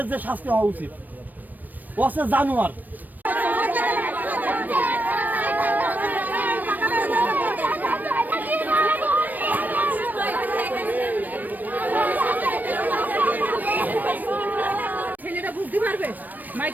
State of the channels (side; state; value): left; late; 0.086 ms